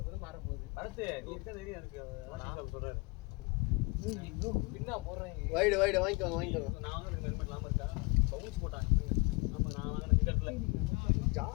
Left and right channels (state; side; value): quieter; right; 26.8 dB